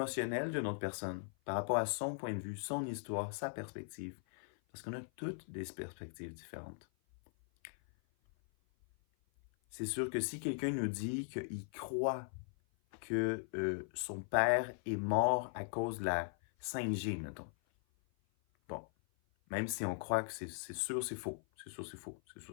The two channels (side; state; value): right; silent; 51 dB below the other